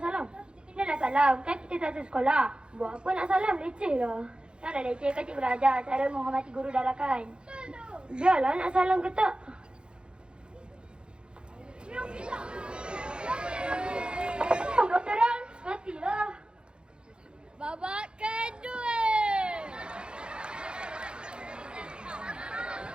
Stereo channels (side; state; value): left; late; 0.052 ms